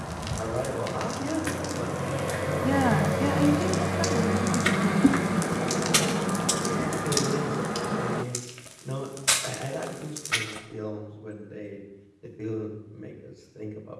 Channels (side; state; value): both; identical; correlation 1.00